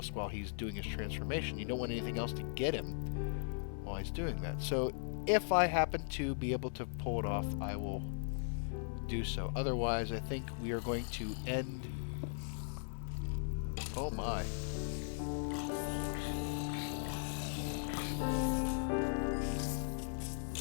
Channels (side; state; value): right; silent; digital silence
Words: while he's doing his transformation. You don't want anything else to get him while he's doing that. So if I happen to be able to pull it off, I will do so. Otherwise, I think we are going to end... Oh my.